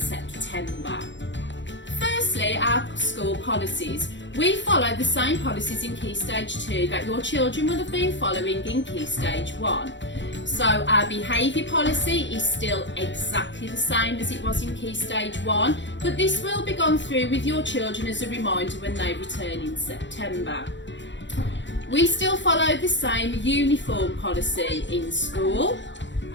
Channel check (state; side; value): late; right; 0.53 ms